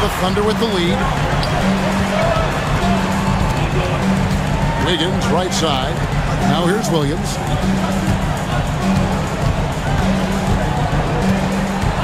The Thunder with the lead. Wiggins right side. Now here's Williams.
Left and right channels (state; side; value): identical; both; correlation 1.00